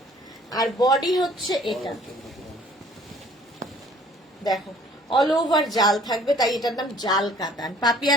আর বডি হচ্ছে এটা। দেখো অল ওভার জাল থাকবে, তাই এটার নাম জাল কাতান।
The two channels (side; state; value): both; normal; correlation 0.55